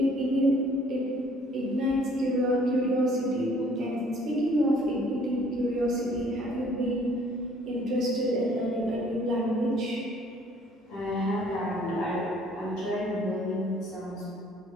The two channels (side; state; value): both; normal; correlation 0.58